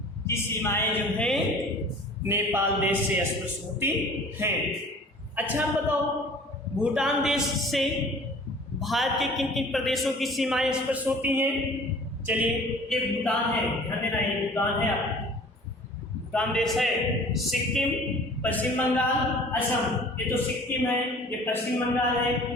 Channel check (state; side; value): normal; both; correlation 0.47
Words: की सीमाएं जो है नेपाल देश से स्पर्श होती हैं। अच्छा बताओ, भूटान देश से भारत के किन किन प्रदेशों की सीमाएं स्पर्श होती हैं? चलिए, ये भूटान है, ध्यान देना, ये भूटान है, भूटान देश है, सिक्किम, पश्चिम बंगाल, असम। ये तो सिक्किम है, ये पश्चिम बंगाल है,